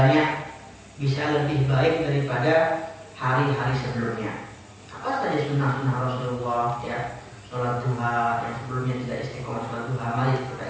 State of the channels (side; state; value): both; identical; correlation 1.00